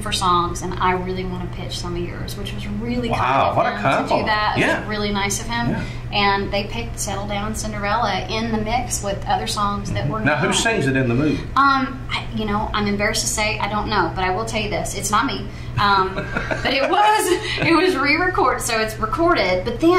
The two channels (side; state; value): both; identical; correlation 1.00